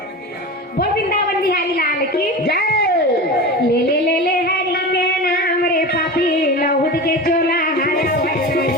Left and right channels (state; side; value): normal; both; correlation 0.28